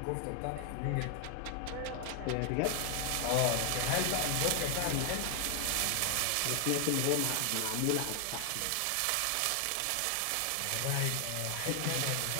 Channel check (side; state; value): both; different; correlation 0.00